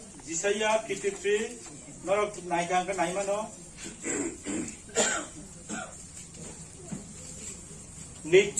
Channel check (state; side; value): identical; both; correlation 1.00